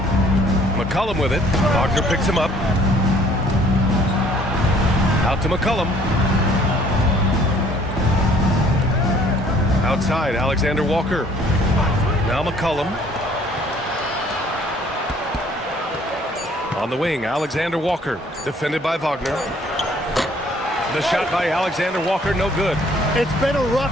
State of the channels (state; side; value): normal; both; correlation 0.58